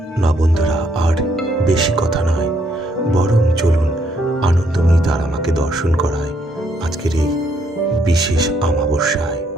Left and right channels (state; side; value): normal; both; correlation 0.72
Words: না বন্ধুরা, আর বেশি কথা নয়, বরং চলুন আনন্দময়ী তারা মাকে দর্শন করায় আজকের এই বিশেষ অমাবস্যায়।